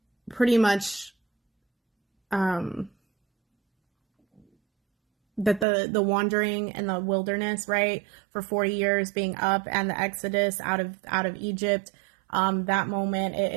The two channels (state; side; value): drops out; left; at 5.7 s